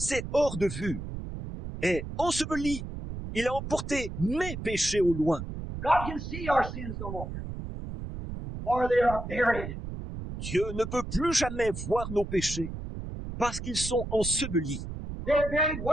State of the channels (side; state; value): right; noise; rumble, 8 dB below the sound